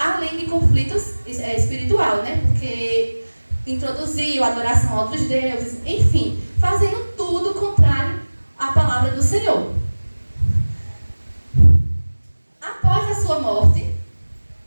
de conflitos espiritual, né? Porque introduziu adoração a outros deuses, enfim, fazendo tudo contrário à palavra do Senhor. Após a sua morte,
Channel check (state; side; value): inverted; both; correlation -1.00